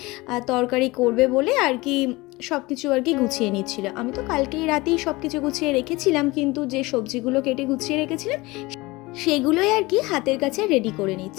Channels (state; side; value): quieter; right; 22.0 dB